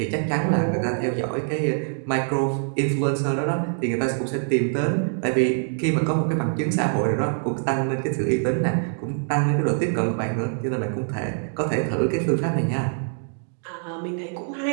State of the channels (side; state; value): left; silent; 62 dB below the other